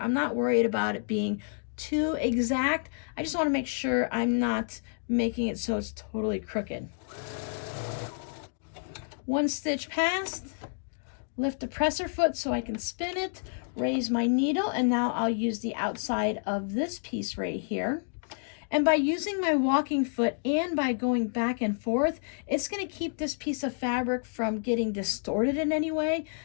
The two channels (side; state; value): right; silent; digital silence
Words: not worried about it being too exact. I just want to make sure I'm not making it so it's totally crooked. 1 stitch past, lift the presser foot so I can spin it, raise my needle, and now I'll use the outside of this piece right here. And by using my walking foot and by going back and forth, it's going to keep this piece of fabric from getting distorted in any way.